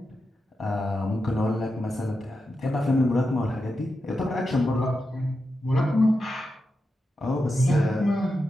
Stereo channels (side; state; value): both; normal; correlation 0.89